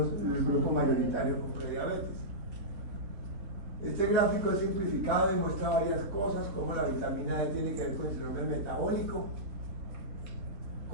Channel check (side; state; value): left; late; 3.7 ms